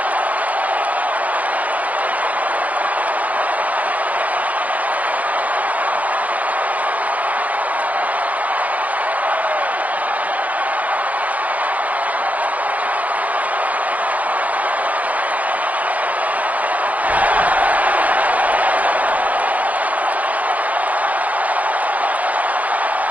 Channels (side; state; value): left; late; 0.076 ms